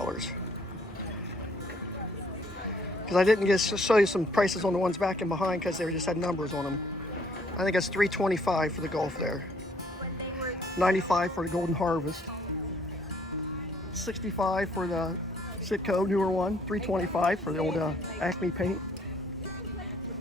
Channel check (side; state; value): both; normal; correlation 0.64